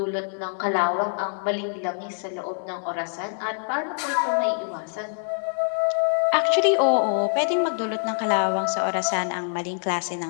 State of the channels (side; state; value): right; silent; 62 dB below the other